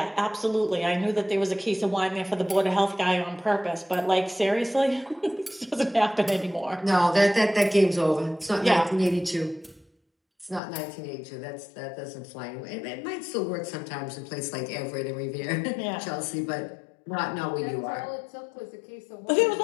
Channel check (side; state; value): right; drops out; at 10.6 s